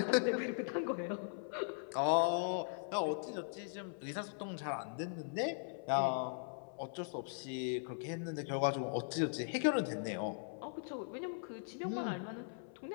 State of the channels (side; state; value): right; silent; 51 dB below the other